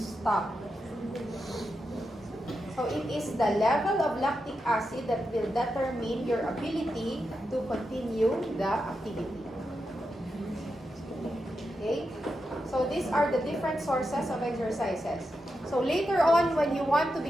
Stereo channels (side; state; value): both; normal; correlation 0.87